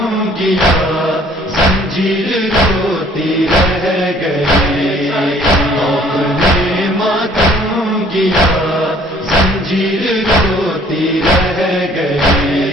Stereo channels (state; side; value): normal; both; correlation 0.57